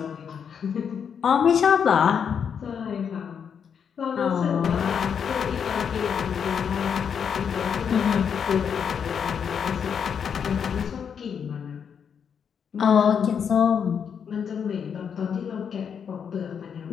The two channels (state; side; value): quieter; right; 7.3 dB